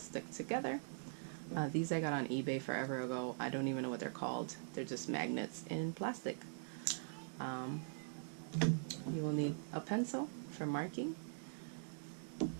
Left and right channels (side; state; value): left; silent; digital silence